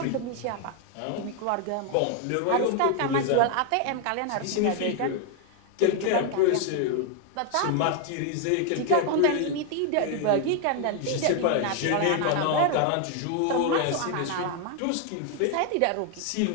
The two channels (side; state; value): both; different; correlation 0.01